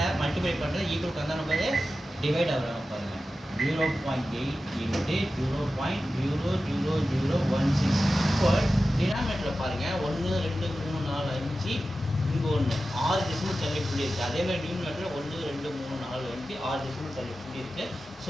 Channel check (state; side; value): normal; both; correlation 0.93